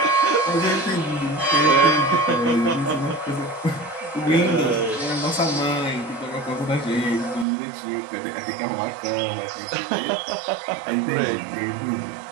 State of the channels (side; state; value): left; drops out; at 7.5 s